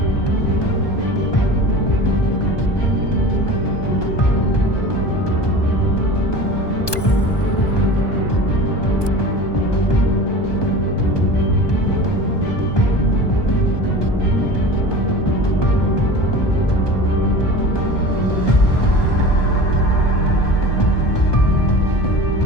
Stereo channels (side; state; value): right; late; 1.2 ms